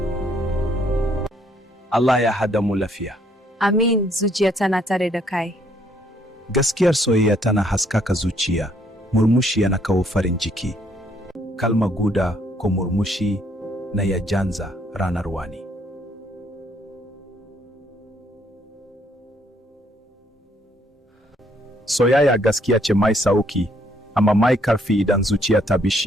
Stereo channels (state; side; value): normal; both; correlation 0.68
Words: Allah ya hada mu lafiya. Amin, zuciya tana tare da kai. Gaskiyar soyayya tana haskaka zuciya, murmushi yana kawo farin ciki. Kalma guda ko murmushi na ya janza ranar wani. Soyayya gaskiya ce mai sauki, amma mai karfi idan zuciya ta